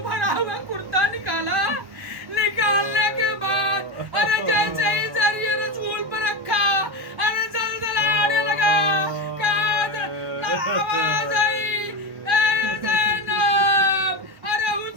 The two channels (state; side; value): late; left; 1.1 ms